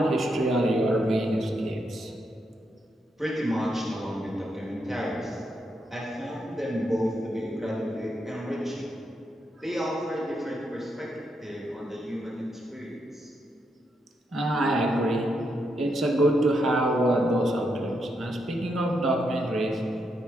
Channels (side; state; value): both; normal; correlation 0.80